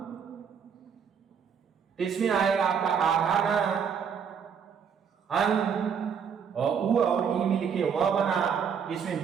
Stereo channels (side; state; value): left; quieter; 7.0 dB